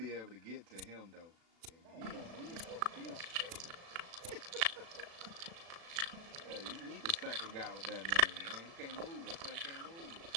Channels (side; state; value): left; late; 36 ms